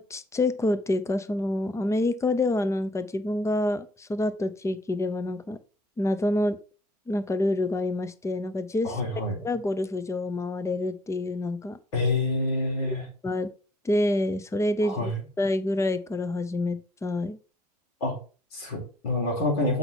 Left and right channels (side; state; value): both; normal; correlation 0.58